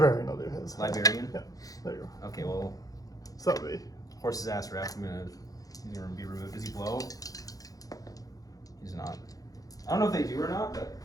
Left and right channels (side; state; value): right; late; 0.17 ms